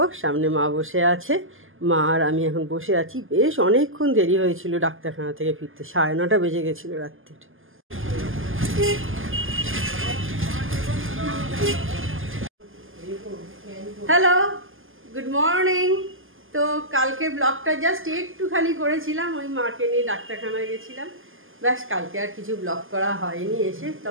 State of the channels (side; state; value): left; late; 0.59 ms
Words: সামনে মা বসে আছে, মা আর আমি এখন বসে আছি। বেশ অনেকক্ষণ দেরি হয়েছিল ডাক্তারখানা থেকে ফিরতে, 9:30 বেজে গেছিলো রাত্রির। Hello, good morning. তো কালকে ব্লগটা জাস্ট একটুখানি করেছিলাম, ওই মাকে নিয়ে ডাক্তারখানায় গেছিলাম, ব্যাস। কালকে আর কিছু ব্লগ করা হয়নি। এসে